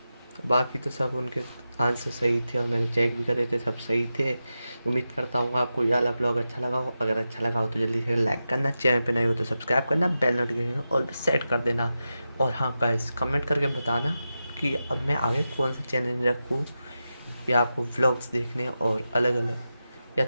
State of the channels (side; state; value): both; inverted; correlation -0.91